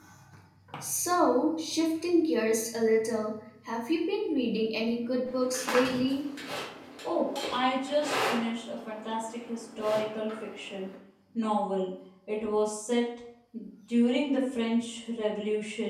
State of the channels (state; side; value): identical; both; correlation 1.00